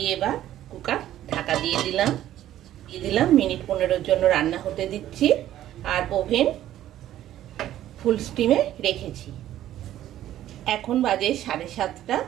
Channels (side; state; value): left; quieter; 12.7 dB